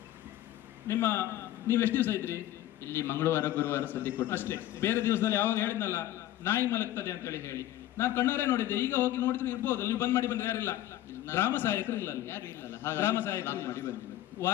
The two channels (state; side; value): quieter; right; 13.7 dB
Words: ನೀವು ಎಷ್ಟು ದಿವಸ ಇದ್ರಿ ಇಲ್ಲಿ? ಮಂಗಳವಾರ ಗುರುವಾರ ಸದ್ಯ ಕೊಟ್ಟು ಅಷ್ಟೇ. ಬೇರೆ ದಿವಸದಲ್ಲಿ ಯಾವಾಗ ಹೇಳಿದ್ನಲ್ಲ ನಾಯಿ ಮಲಗ್ತದೆ ಅಂತ ಹೇಳಿ ನಾನು ಕಣ್ಣಾರೆ ನೋಡಿದ್ದೆ. ಈಗ ಹೋಗಿ ನೋಡಿದ್ರೆ ಇರ್ಬೋದು, ನೀವು ಬಂದ್ ಮಾಡಿ ಬಂದ್ರೆ ಯಾರಿಲ್ಲ, ಗ್ರಾಮ ಸಹಾಯಕರು ಇಲ್ಲ, ಗ್ರಾಮ ಸಹಾಯಕರು ಮಾಡಿ ಬಂದಿಲ್ಲ.